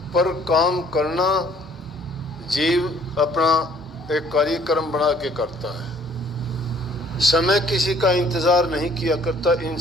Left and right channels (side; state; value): both; normal; correlation 0.59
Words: पर काम करना जीव अपना एक कार्यक्रम बना के करता है। समय किसी का इंतज़ार नहीं किया करता।